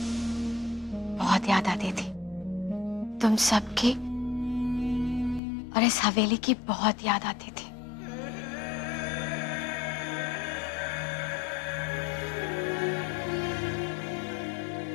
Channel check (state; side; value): drops out; right; at 5.4 s